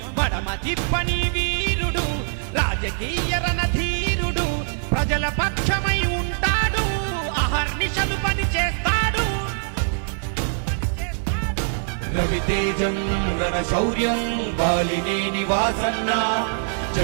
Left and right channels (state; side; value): silent; left; 56 dB below the other